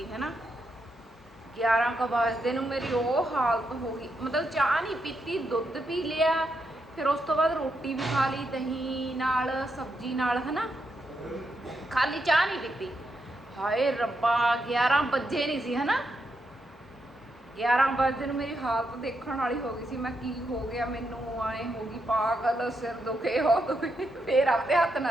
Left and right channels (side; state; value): both; normal; correlation 0.82